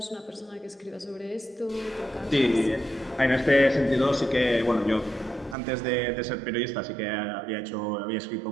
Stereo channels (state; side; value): drops out; left; at 5.6 s